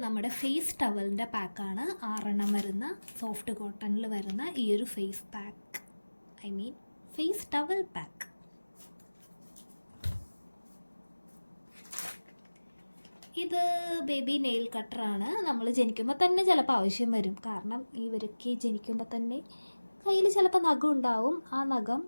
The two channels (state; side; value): inverted; both; correlation -1.00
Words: നമ്മുടെ ഫേസ് ടവലിൻ്റെ പാക്കാണ്. 6 വരുന്ന സോഫ്റ്റ് കോട്ടണിൽ വരുന്ന ഈ ഒരു face pack, face towel pack. ഇത് ബേബി നെയിൽ കട്ടറാണ്. നമ്മൾ ജനിക്കുമ്പോൾ തന്നെ ചിലപ്പോൾ ആവശ്യം വരും. കാരണം ഇവർക്ക് ജനിക്കുമ്പോൾ തന്നെ കയ്യിൽ ചിലപ്പോൾ നഖം ഉണ്ടാവും. ആ നഖം